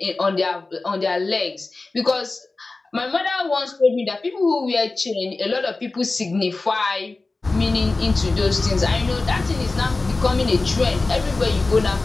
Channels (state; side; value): quieter; right; 3.4 dB